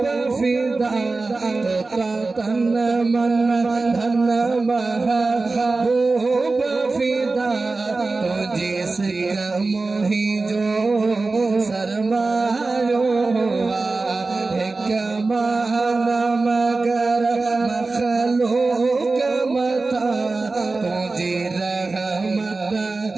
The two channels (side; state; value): left; quieter; 3.6 dB